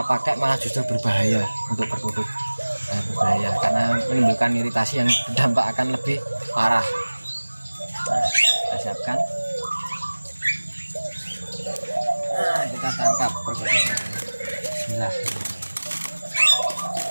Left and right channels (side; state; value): both; inverted; correlation -1.00